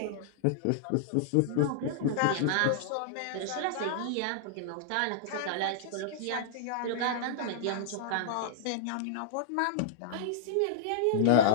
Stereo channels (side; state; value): both; different; correlation -0.01